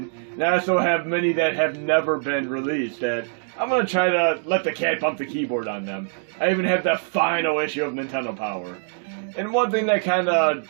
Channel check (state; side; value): silent; left; digital silence